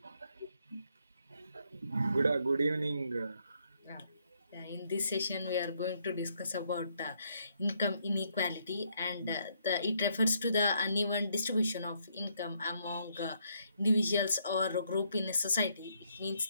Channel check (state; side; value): inverted; both; correlation -0.73